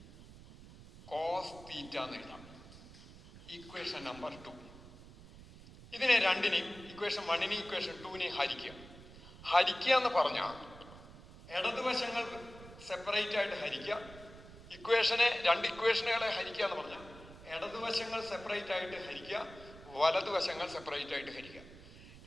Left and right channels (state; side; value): noise; right; rumble, 18 dB below the sound